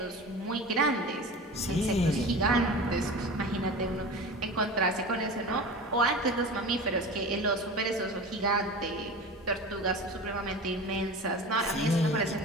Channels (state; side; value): normal; both; correlation 0.33